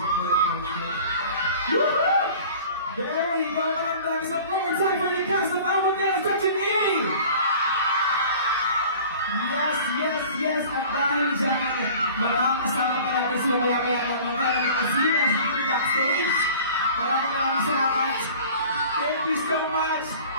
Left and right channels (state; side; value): inverted; both; correlation -0.44